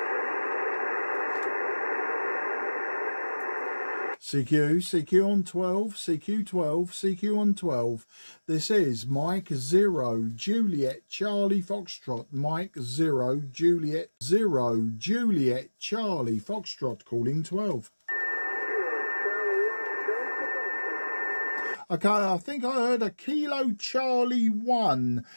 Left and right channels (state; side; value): inverted; both; correlation -1.00